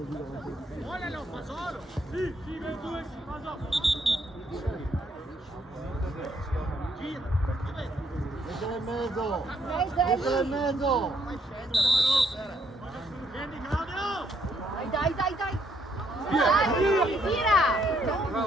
Volalo, fa solo! Sì, sì, per due, fa solo! Gira, Mettila in mezzo! Mezzo è Mettila in lì. mezzo! scendi Claudio! Dai, dai, dai. Dai, tira.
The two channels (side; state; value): both; normal; correlation 0.71